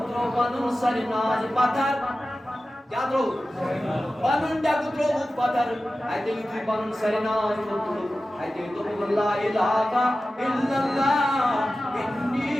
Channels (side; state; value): both; normal; correlation 0.95